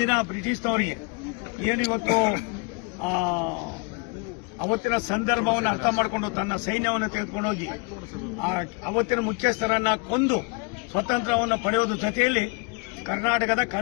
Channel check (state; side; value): quieter; right; 30.8 dB